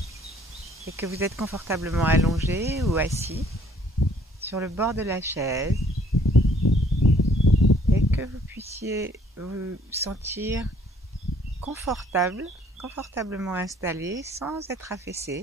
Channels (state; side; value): normal; both; correlation 0.61